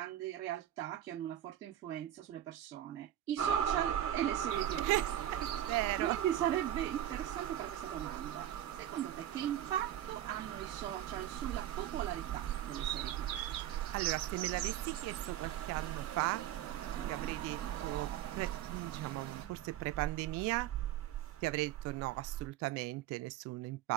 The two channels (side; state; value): left; quieter; 12.2 dB